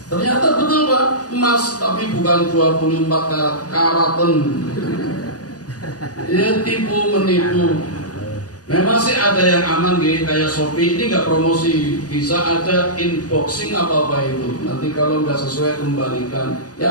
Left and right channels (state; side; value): late; right; 0.68 ms